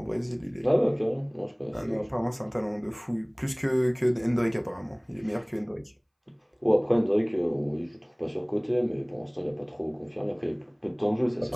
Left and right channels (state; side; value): identical; both; correlation 1.00